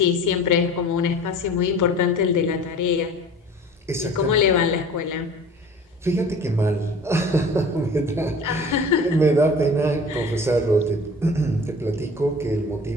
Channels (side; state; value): both; normal; correlation 0.43